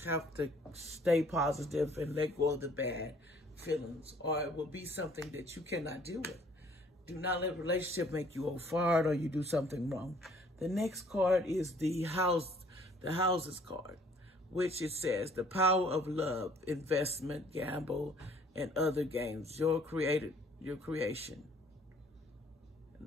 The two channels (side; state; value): both; normal; correlation 0.59